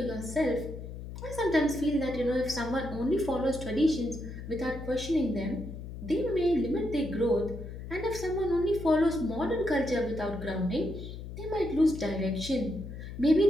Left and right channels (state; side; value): noise; left; hum, 10 dB below the sound